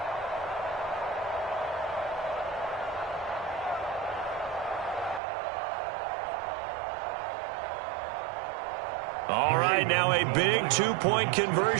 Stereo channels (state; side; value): drops out; left; at 5.2 s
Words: All right, now a big 2-point